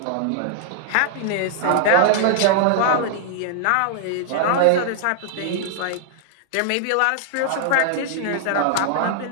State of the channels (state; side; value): different; both; correlation -0.01